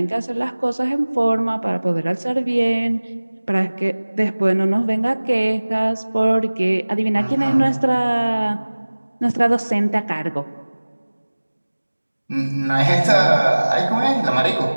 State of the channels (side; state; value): both; inverted; correlation -1.00